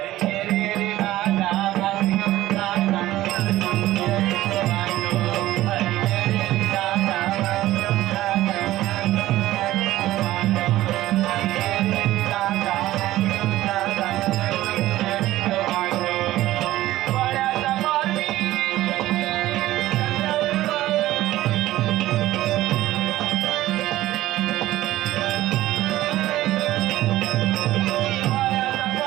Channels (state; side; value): quieter; left; 15.6 dB